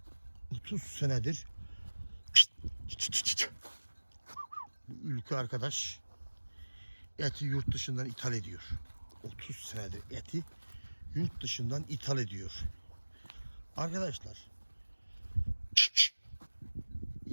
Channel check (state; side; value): inverted; both; correlation -1.00